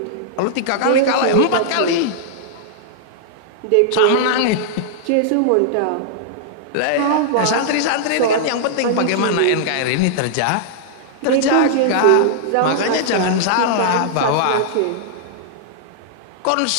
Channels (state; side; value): different; both; correlation -0.02